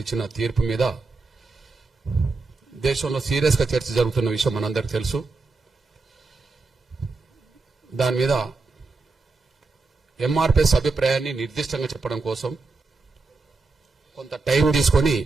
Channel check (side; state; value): left; quieter; 3.8 dB